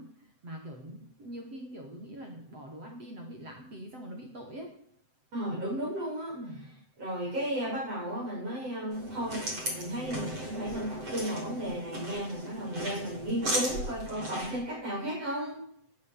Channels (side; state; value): left; late; 7.8 ms